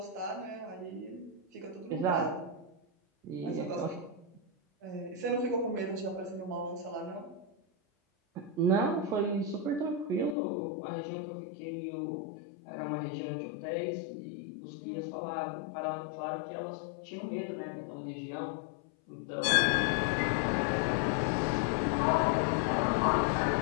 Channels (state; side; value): drops out; right; at 10.4 s